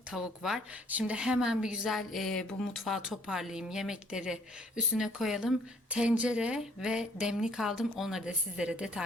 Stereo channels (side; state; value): both; normal; correlation 0.61